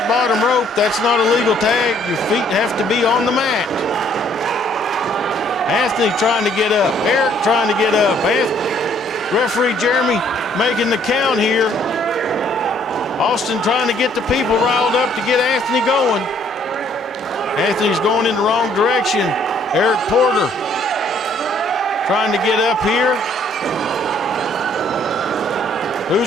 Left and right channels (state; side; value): normal; both; correlation 0.63